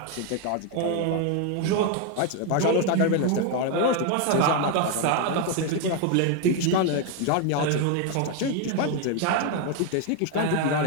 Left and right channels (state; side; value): different; both; correlation 0.01